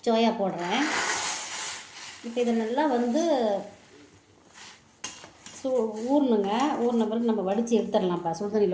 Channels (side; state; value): both; identical; correlation 1.00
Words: சோயா போடுறேன். இப்போ இதை நல்லா ஊறணுங்க. ஊறின பிறகு நம்ம வடித்து எடுத்துடலாம்ப்பா